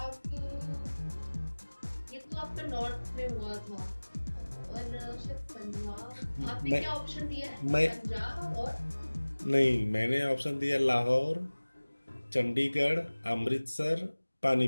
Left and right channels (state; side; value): inverted; both; correlation -1.00